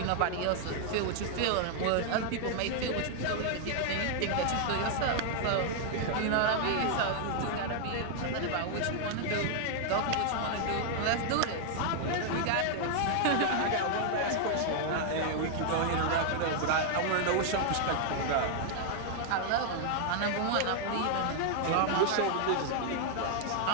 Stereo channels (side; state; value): both; different; correlation 0.00